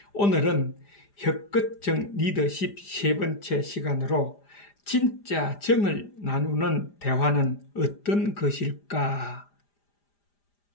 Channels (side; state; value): right; late; 4.9 ms